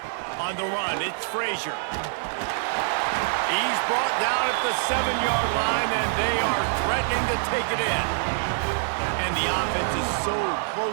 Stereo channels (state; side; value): silent; left; 60 dB below the other